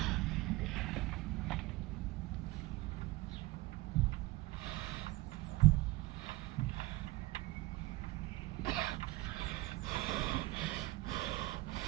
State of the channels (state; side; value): quieter; left; 19.6 dB